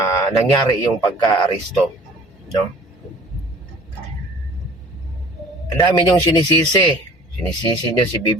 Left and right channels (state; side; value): normal; both; correlation 0.48